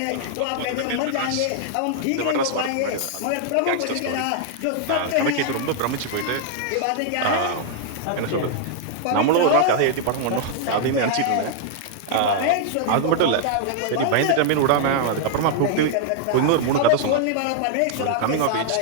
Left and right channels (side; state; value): both; different; correlation -0.01